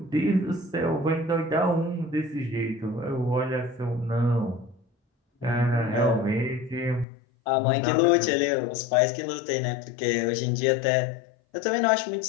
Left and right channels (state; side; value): drops out; right; at 7.1 s